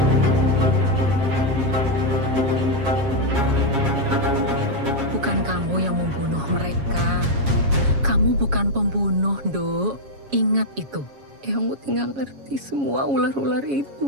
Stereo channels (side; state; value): left; late; 7.2 ms